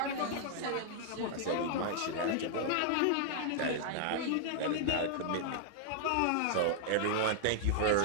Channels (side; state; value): both; different; correlation -0.01